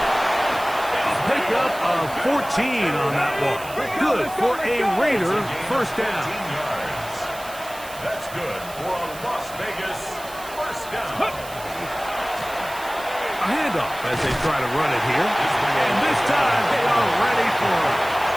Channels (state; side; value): noise; right; hiss, 16 dB below the sound